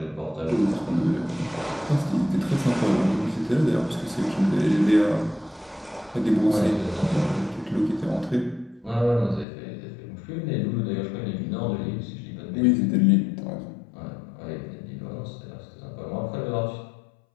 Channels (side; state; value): right; drops out; at 9.5 s